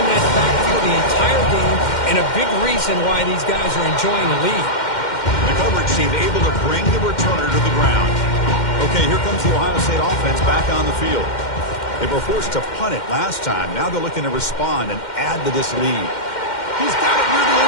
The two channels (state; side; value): late; right; 2.1 ms